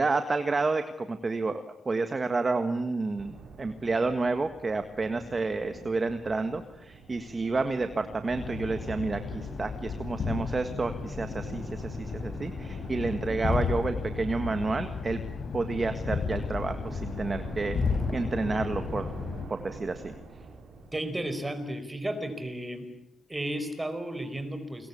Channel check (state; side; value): normal; both; correlation 0.89